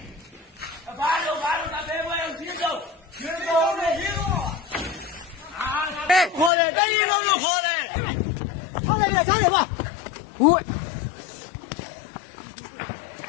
ခေါ်တယ်တကြီးလုံးလို့ခေါ်တယ်ဟုတ်တယ်ဗျာထားရပါဟုတ်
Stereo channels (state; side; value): drops out; right; at 6.5 s